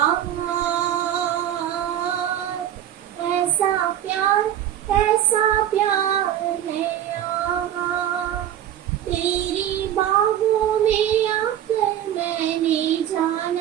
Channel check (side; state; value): left; quieter; 11.1 dB